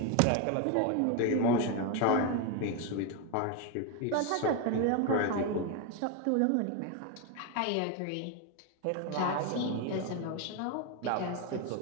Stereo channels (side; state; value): both; different; correlation 0.02